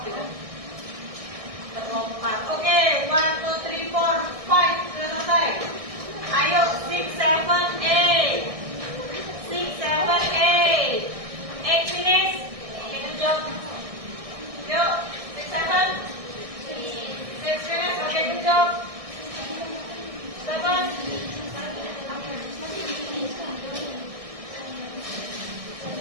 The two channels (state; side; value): late; left; 1.6 ms